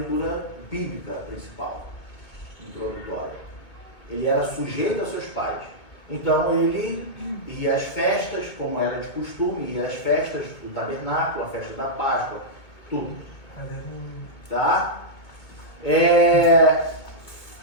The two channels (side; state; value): right; late; 2.2 ms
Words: bíblica principal, introdutória. Ele era sujeito aos seus pais. Então ele ia às festas, como era de costume, ia às festas do tabernáculo, a festa da Páscoa, tudo. Tá?